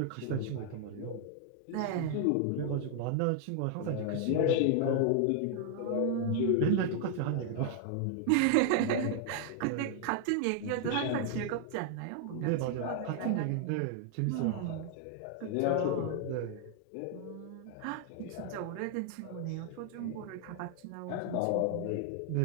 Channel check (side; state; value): both; different; correlation 0.00